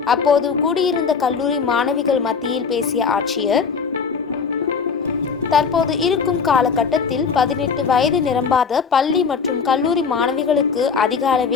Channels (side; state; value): right; quieter; 5.7 dB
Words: அப்போது கூடியிருந்த கல்லூரி மாணவிகள் மத்தியில் பேசிய ஆட்சியர், தற்போது இருக்கும் காலகட்டத்தில் 18 வயது நிரம்பாத பள்ளி மற்றும் கல்லூரி மாணவிகளுக்கு அதிக